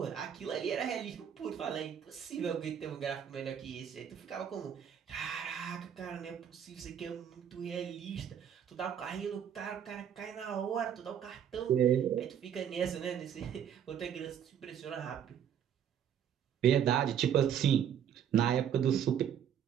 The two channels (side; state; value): left; quieter; 8.9 dB